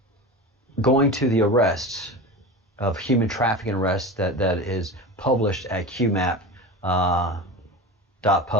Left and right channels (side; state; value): both; normal; correlation 0.28